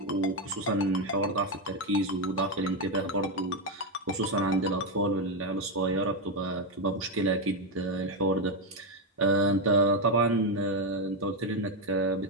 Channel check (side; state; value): both; normal; correlation 0.06